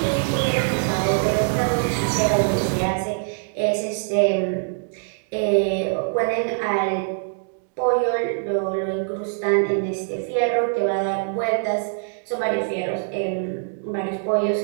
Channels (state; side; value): silent; left; digital silence